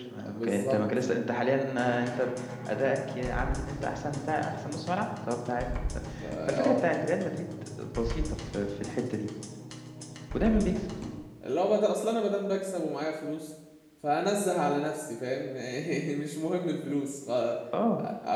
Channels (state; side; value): identical; both; correlation 1.00